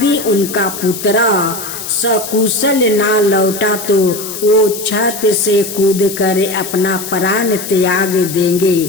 उनका पुत्र सकुशल ना लौटा तो वो छत से कूदकर अपना प्राण त्याग देंगे।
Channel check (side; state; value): left; noise; hiss, 9 dB below the sound